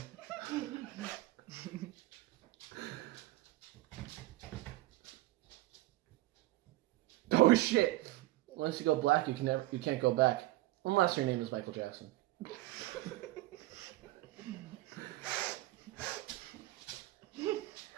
Oh shit! Once you go black, you can't go back. Unless your name is Michael Jackson.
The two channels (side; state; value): left; quieter; 17.7 dB